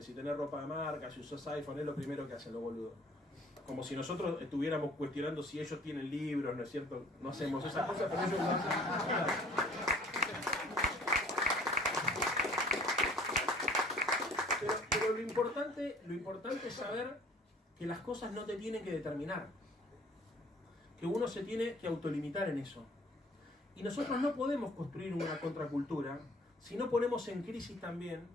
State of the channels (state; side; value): normal; both; correlation 0.53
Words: Si tenés ropa de marca, si usás iPhone, es lo primero que hacen los boludos. Como si nosotros estuviéramos cuestionando si ellos tienen libros, ¿no es cierto? No hacemos esas cosas, pero ellos lo hacen. Pero lo importante es saber que las cosas no te tienen que determinar. Que uno se tiene que autolimitar en eso. Y nosotros no podemos construir una contracultura si no ponemos en crisis también